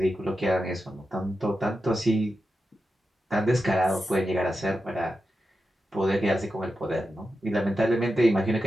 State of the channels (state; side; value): normal; both; correlation 0.90